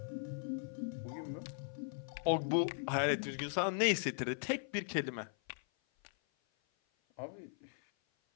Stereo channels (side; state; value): right; silent; 52 dB below the other